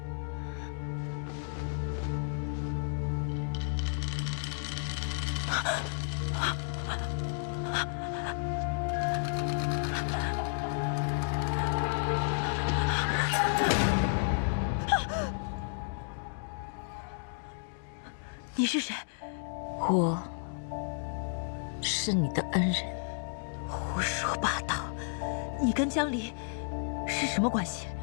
你是谁？我是你的恩人。胡说八道！你跟江离是什么关系？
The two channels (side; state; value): right; silent; digital silence